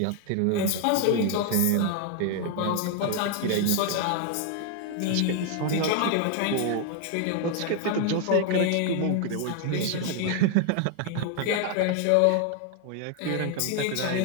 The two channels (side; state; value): both; different; correlation 0.00